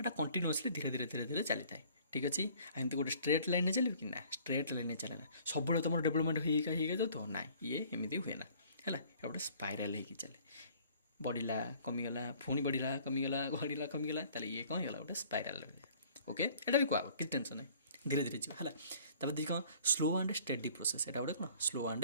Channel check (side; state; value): both; inverted; correlation -0.54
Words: କଣ୍ଟିନ୍ୟୁଅସ୍ଲି ଧୀରେ ଧୀରେ ଚାଲିଥାଏ। ଠିକ୍ ଅଛି। ଏମିତି ଗୋଟେ ଷ୍ଟ୍ରେଟ୍ ଲାଇନ୍ରେ ଚାଲିବ କି ନା, ଷ୍ଟ୍ରେଟ୍ ଲାଇନ୍ରେ ଚାଲେ ନା, ସବୁବେଳେ ତୁମର ଡେଭଲପମେଣ୍ଟ ହେଇକା ଯାଉଥିବ, ନାଇଁ, ଇଏ ଏମିତି ହୁଏ ନା ହେଲା, ଏଇଟା ଗୋଟେ ସ୍ପାଇରାଲ୍ ହେଇକି ଚାଲେ, ବଢ଼ିଲା କମିଗଲା, ପୁଣି ବଢ଼ିଲା କମିଗଲା, ବଢ଼ିଲା କମିଗଲା, ତାହେଲେ ଇଏ କ'ଣ ହେଇଗଲା, ଗୋଟେ ସ୍ପାଇରାଲ୍। ଓକେ, ଏଇଟା ବି କୁହାହବ, କିଛି ଟେନସନ୍ ନାହିଁ, ଧୀରେ ଧୀରେ ଯିବ ହେଲା। ତାପରେ ଦେଖି କ'ଣ, ସ୍ଲୋ ଆଣ୍ଡ ଷ୍ଟେଡି ପ୍ରୋସେସ୍। ଏଇଟା ଗୋଟେ କ'ଣ, ସ୍ଲୋ